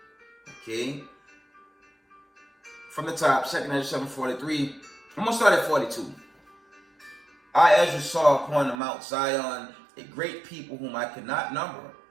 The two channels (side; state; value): left; drops out; at 8.8 s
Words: Okay. From the top, 2nd Ezra 7:43. I'm going to start at 42. I, Ezra, saw upon the Mount Zion a great people whom I could not number,